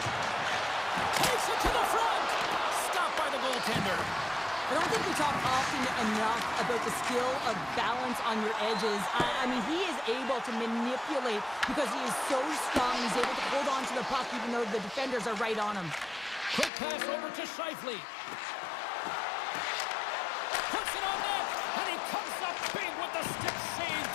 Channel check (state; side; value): drops out; right; at 16.7 s